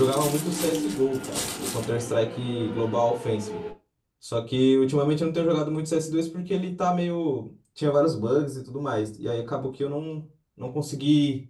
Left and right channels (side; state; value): both; identical; correlation 1.00